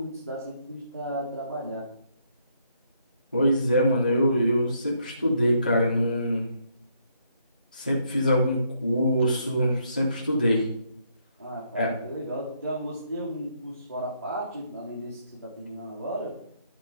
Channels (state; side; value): inverted; both; correlation -0.72